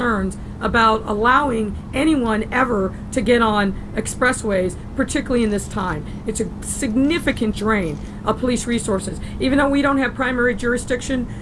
about allowing anyone ever to get on expressways, particularly in this time. It's a significant drain of police resources. Even though we don't have primary jurisdiction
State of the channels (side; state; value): both; identical; correlation 1.00